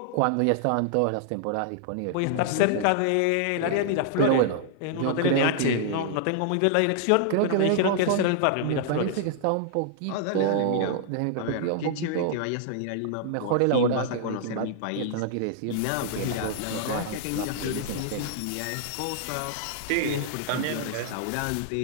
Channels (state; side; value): different; both; correlation -0.01